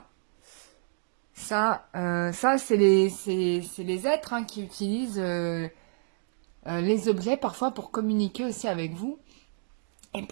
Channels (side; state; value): left; silent; 59 dB below the other